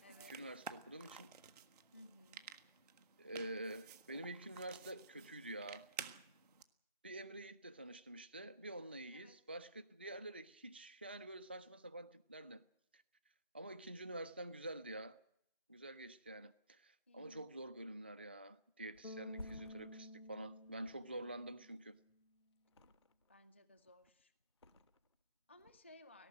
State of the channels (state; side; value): inverted; both; correlation -0.62